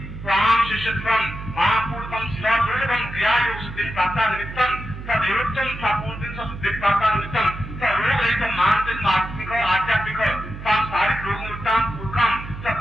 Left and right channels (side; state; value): right; noise; hum, 11 dB below the sound